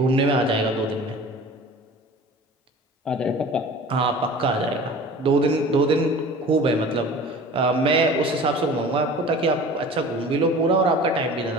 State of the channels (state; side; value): normal; both; correlation 0.41